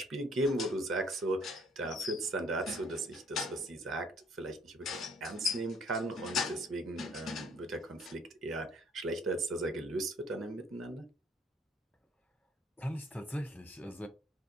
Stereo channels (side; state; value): both; normal; correlation 0.61